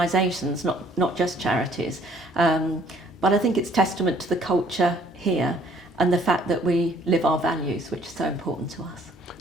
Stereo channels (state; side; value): normal; both; correlation 0.60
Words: not just charities. But I think it's testament to the culture here and the fact that we live our values, which is so important to us.